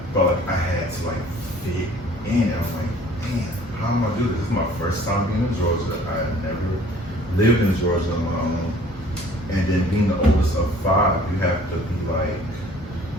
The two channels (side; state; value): both; normal; correlation 0.53